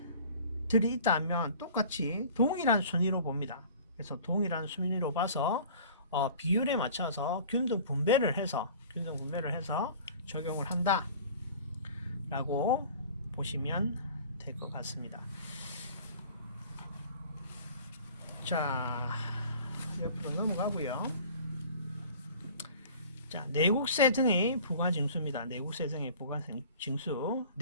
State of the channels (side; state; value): both; inverted; correlation -0.45